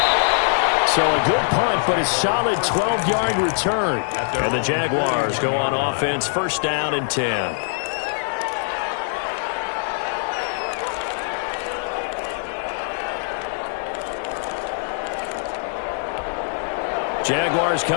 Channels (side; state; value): right; silent; 61 dB below the other